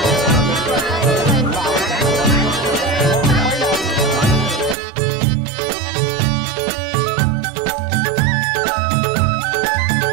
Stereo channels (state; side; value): drops out; left; at 4.8 s